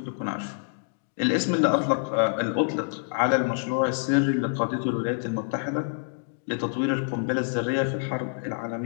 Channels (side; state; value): right; silent; digital silence